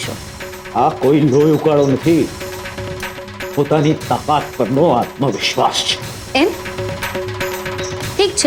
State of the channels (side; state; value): both; identical; correlation 1.00